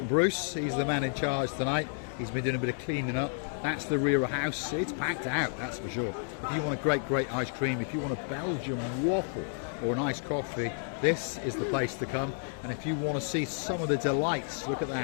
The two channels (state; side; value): silent; right; 57 dB below the other